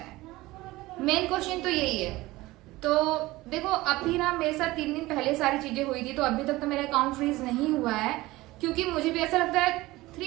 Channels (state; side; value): quieter; left; 19.1 dB